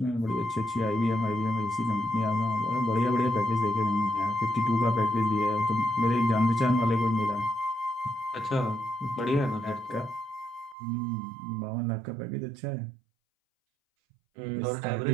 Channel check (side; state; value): left; drops out; at 10.8 s